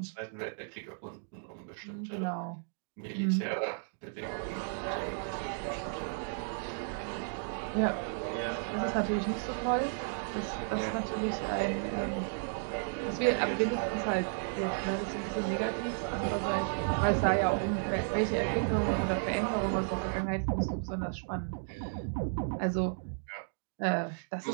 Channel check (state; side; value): silent; left; digital silence